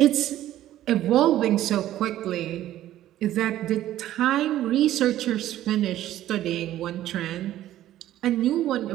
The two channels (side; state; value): left; quieter; 13.3 dB